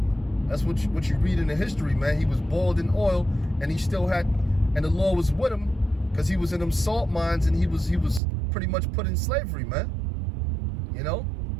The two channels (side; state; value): left; drops out; at 8.2 s